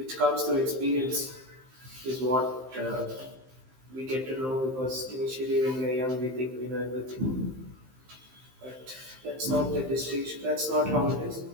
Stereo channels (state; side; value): late; left; 15 ms